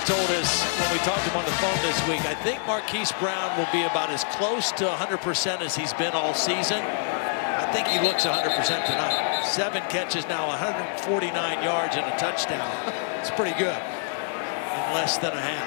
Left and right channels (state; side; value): silent; right; digital silence